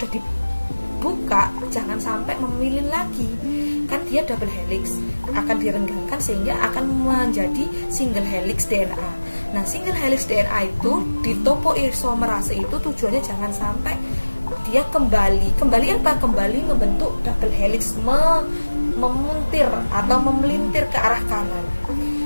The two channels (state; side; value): inverted; both; correlation -1.00